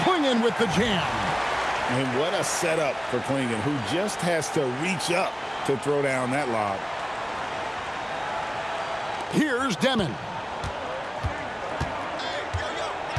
Klingon with the jam. And what a setup for Klingon, who just has to reach up to throw down that lob. Here's Demon.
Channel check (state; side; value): identical; both; correlation 1.00